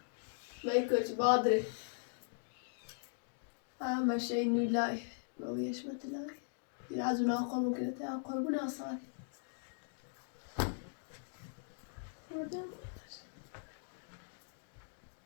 من کچ بادره مشه نولای رویش متلای یه از اونا قربون کنه قربون آسان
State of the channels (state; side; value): silent; right; digital silence